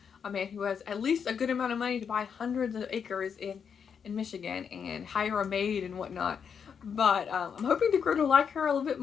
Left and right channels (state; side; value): quieter; right; 6.9 dB